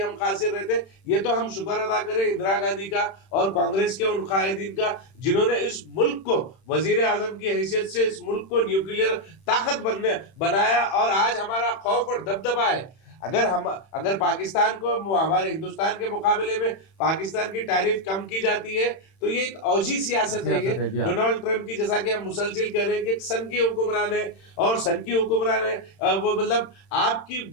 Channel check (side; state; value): right; late; 31 ms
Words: खासिर रहते। ये तो हम शुक्र अदा करें इंदिरा गांधी का और कांग्रेस के उन कायदीन का, जिन्होंने इस मुल्क को वजीर आजम की हैसियत से इस मुल्क को न्यूक्लियर ताकत बनाया, और आज हमारा खौफ और दबदबा है। अगर पाकिस्तान को हमारे हिंदुस्तान के मुकाबले में पाकिस्तान की टैरिफ कम की जाती है तो ये एक औजी सियासत है। ये डोनाल्ड ट्रंप की, जैसा कि हम मुसलसिल कह रहे हैं कि एक सन की हुक्मरान है, और सन की हुक्मरान है वो मतलब आपकी